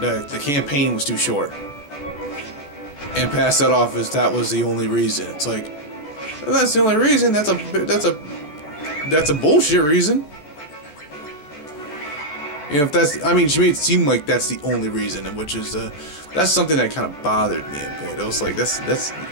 campaign was too short. And pass that off as that was the only reason. It's like, well, that's the only reason. That's a bullshit reason. If that's, I mean, she made it seem like that's the only reason, and which is that's something that kind of bothered me a bit. It was like that's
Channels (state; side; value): late; right; 14 ms